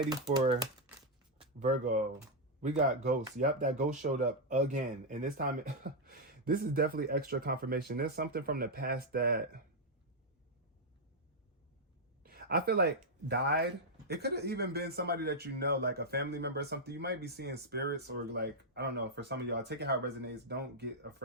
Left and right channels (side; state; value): both; normal; correlation -0.02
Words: for Virgo. We got ghosts. Yep, that ghost showed up again. And this time, this is definitely extra confirmation. There's something from the past that I feel like died. It could have even been somebody that you know, like a family member or something. You might be seeing spirits, or like, I don't know, for some of y'all, take it how it resonates. Don't get